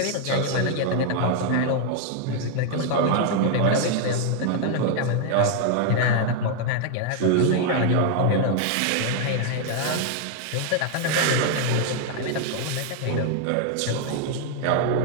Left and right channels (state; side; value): different; both; correlation 0.00